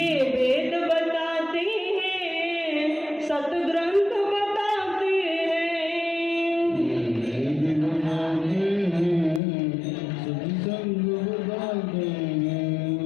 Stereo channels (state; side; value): drops out; right; at 9.4 s